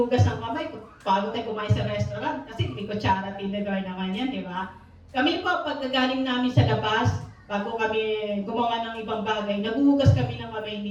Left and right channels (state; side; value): identical; both; correlation 1.00